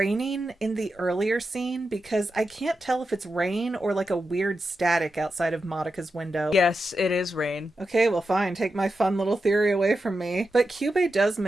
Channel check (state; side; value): normal; both; correlation 0.89